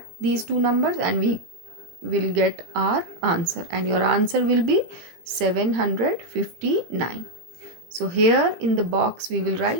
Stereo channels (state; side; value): late; left; 18 ms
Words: these two numbers and we will get our answer, and your answer will be 759. So here in the box we will